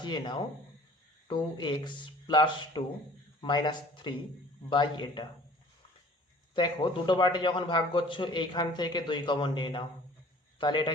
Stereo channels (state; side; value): normal; both; correlation 0.50